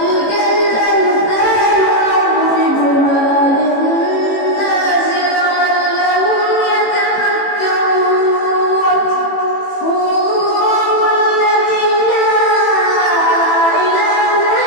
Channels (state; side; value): late; right; 18 ms